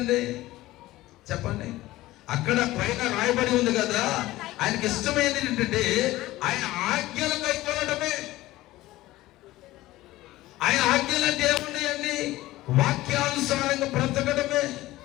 చెప్పండి? అక్కడ పైన రాయబడి ఉంది కదా, ఆయనకి ఇష్టమైనది ఏంటంటే ఆయన ఆజ్ఞలు కైకొనడమే. ఆయన ఆజ్ఞలు అంటే ఏమున్నాయండి? వాక్యానుసారంగా బ్రతకడమే,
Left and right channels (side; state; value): right; quieter; 17.2 dB